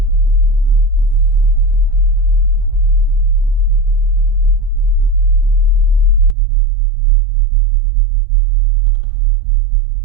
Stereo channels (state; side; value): drops out; left; at 6.4 s